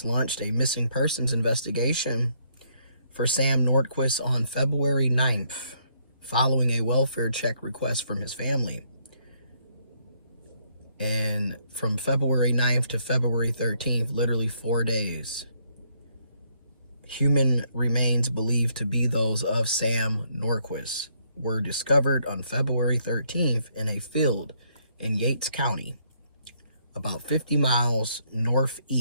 launched a missing persons investigation for Sam Nordquist on February 9th, following a welfare check request from his family. And from February 9th to February 13th, literally 4 days, human remains believed to be those of Sam Nordquist were discovered on February 13th in a field in Yates County, about 50 miles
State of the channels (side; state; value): both; inverted; correlation -0.71